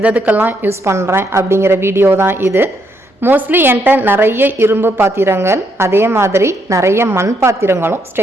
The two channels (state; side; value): normal; both; correlation 0.75